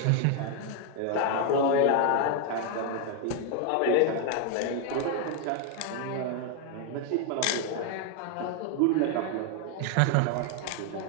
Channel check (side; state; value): both; different; correlation 0.01